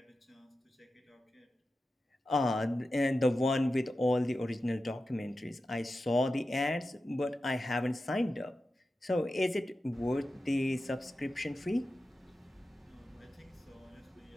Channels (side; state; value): both; normal; correlation 0.92